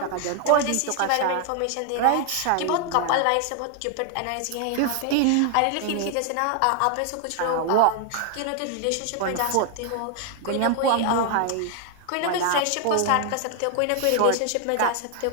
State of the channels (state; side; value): different; both; correlation 0.00